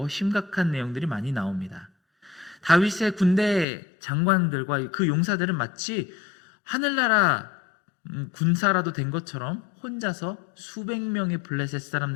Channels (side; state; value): right; drops out; at 3.7 s